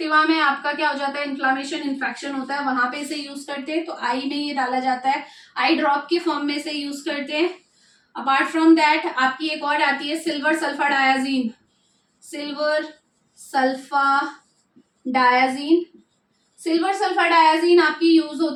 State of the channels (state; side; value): identical; both; correlation 1.00